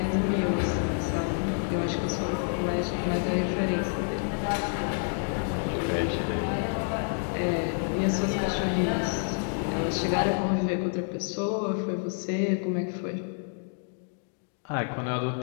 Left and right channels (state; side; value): silent; right; 59 dB below the other